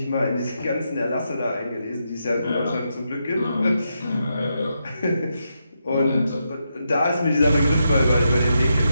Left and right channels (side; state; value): both; inverted; correlation -0.83